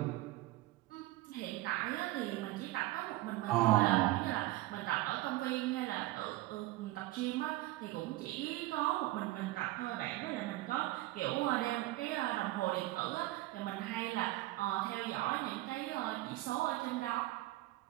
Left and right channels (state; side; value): quieter; left; 17.9 dB